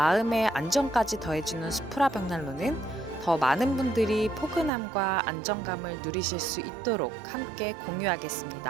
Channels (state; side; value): drops out; left; at 4.7 s